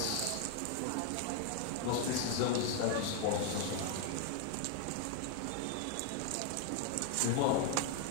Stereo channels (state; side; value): different; both; correlation 0.00